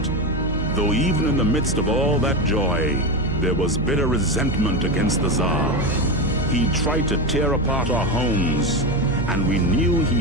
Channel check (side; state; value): right; noise; hum, 4 dB below the sound